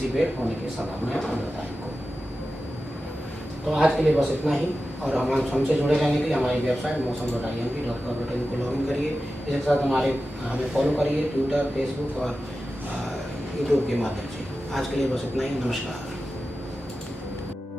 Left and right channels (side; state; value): both; normal; correlation 0.93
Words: होने की संभावना है 15 तारीख को। तो आज के लिए बस इतना ही और हमसे जुड़े रहने के लिए हमारी वेबसाइट मौसम.imp.gov.in को लॉगिन करिए। इसके साथ हमें फॉलो करिए ट्विटर फेसबुक और यूट्यूब के माध्यम से। आज के लिए बस इतना ही। नमस्कार।